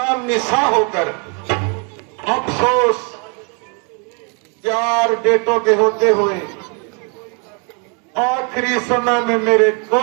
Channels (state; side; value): quieter; left; 36.3 dB